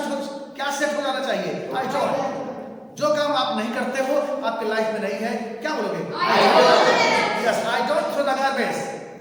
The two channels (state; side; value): identical; both; correlation 1.00